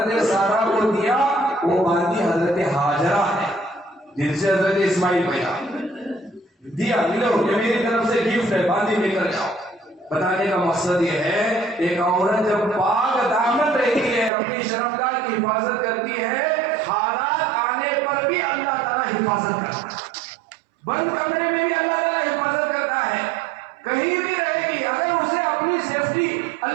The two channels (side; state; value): left; drops out; at 14.3 s